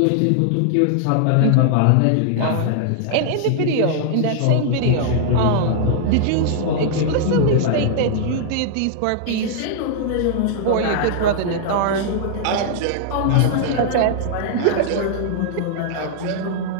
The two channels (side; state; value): both; different; correlation -0.01